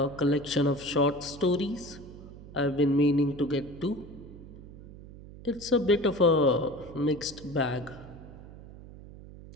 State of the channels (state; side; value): noise; right; hum, 17 dB below the sound